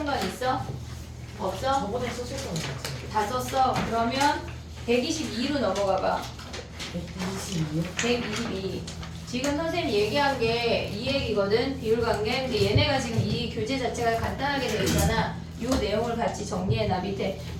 있어? 없어? 저번에 썼었던 거 같아. 다 썼어? 그러면 122로 넘어가봐 122요? 122 지금 선생님 얘기한 게 이 얘기거든 비율관계. 근데 얘네가 지금 이 교재 자체가 간단하게 되어 있잖아. 요 내용을 같이 정리해놔. 밑에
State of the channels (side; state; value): both; identical; correlation 1.00